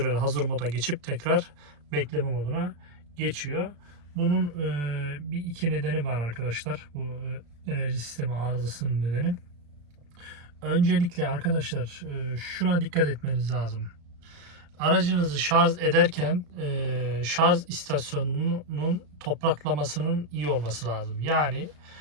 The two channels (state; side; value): late; left; 34 ms